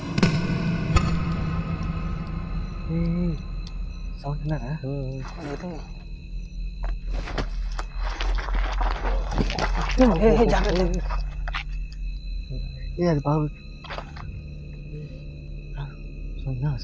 సౌండ్ విన్నారా? అది బాగు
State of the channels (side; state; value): both; identical; correlation 1.00